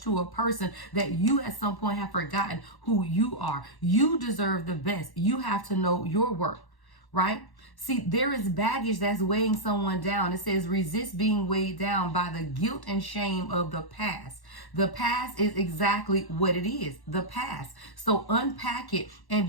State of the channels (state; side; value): late; right; 1.1 ms